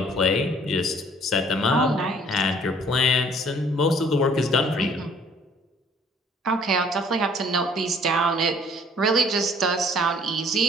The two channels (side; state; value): both; normal; correlation 0.57